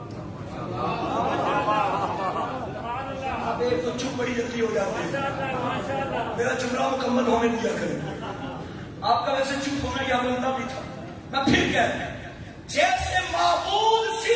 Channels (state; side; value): identical; both; correlation 1.00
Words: اب ایک تو چپ بڑی جلدی ہو جاتی ہے، میرا جملہ مکمل ہونے دیا کریں. آپ کا ویسے چپ ہونا یا بنتا بھی تھا. میں پھر کہتا ہوں جیسے معبود